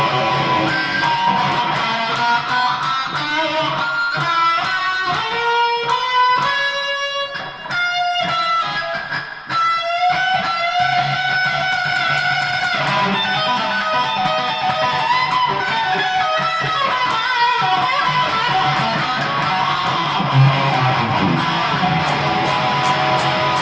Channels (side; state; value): both; identical; correlation 1.00